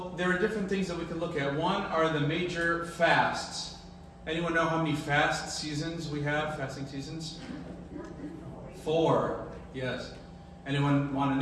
there are different things that we can look at. One are the major fasts. Anyone know how many fast seasons we have, fasting seasons? 4, yes. Anyone want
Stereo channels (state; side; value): identical; both; correlation 1.00